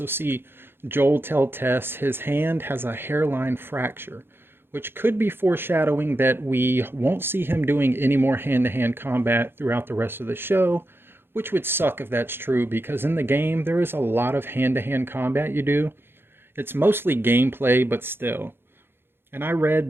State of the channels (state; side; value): late; left; 0.11 ms